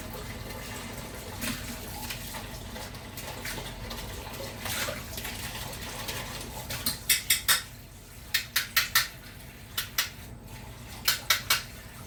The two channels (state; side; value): identical; both; correlation 1.00